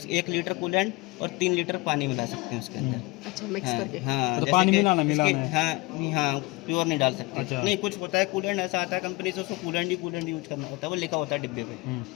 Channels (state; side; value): quieter; right; 23.3 dB